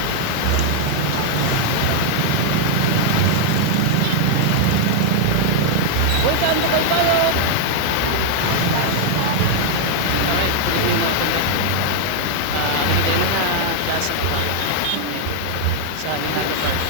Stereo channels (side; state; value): both; different; correlation 0.00